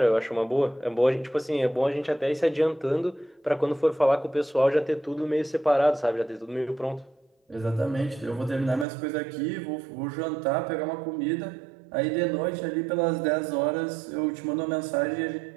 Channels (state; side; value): drops out; left; at 8.8 s